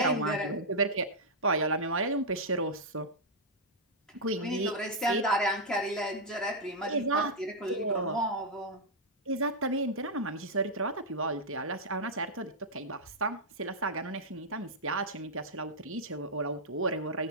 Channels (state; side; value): normal; both; correlation -0.05